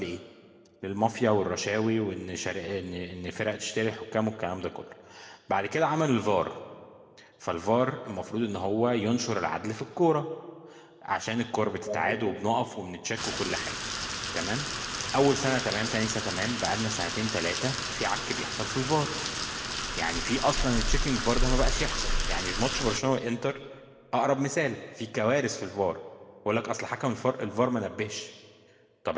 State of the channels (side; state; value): both; identical; correlation 1.00